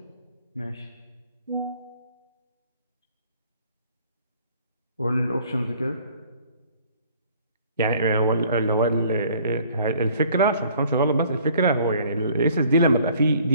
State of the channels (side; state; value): both; inverted; correlation -0.56